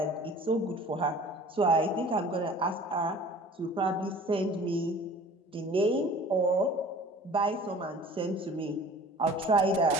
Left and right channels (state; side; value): normal; both; correlation 0.46